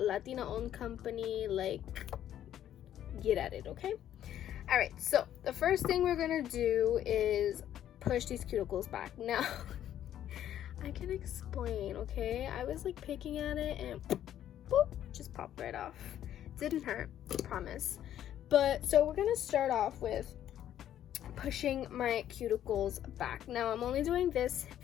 company. Like, get at it, okay? All right, so the first thing we're gonna do is push these cuticles back. Now I can explain, okay? I was like picking at it and boop, just popped right off. Didn't hurt, promise. But so we're gonna start off with pushing my cuticles back. Now I'm only doing this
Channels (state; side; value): quieter; right; 11.2 dB